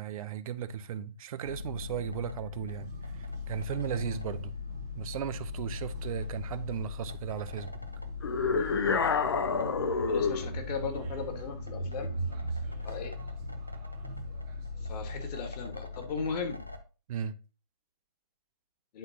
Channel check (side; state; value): both; inverted; correlation -0.40